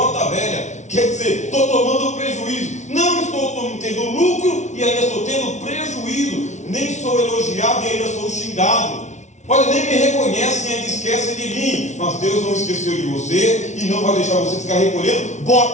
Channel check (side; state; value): right; late; 0.34 ms